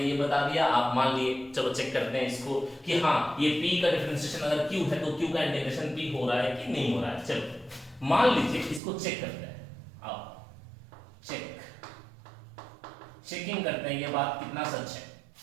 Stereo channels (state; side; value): drops out; left; at 8.8 s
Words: ये बता दिया, आप मान लिए, चलो चेक करते हैं इसको कि हाँ ये p का डिफरेंशिएशन अगर q है तो q का इंटीग्रेशन p हो रहा है कि नहीं हो रहा है। चलो मान लीजिए इसको चेक करते हैं, आओ चेकिंग करते हैं ये बात कितना सच है।